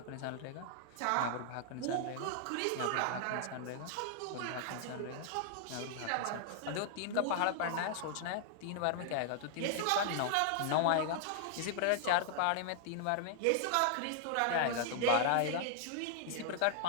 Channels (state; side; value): different; both; correlation 0.00